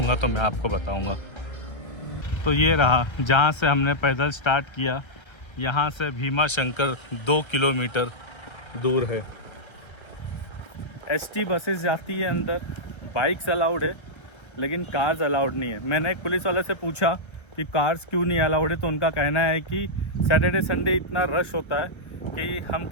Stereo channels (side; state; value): right; late; 1.3 ms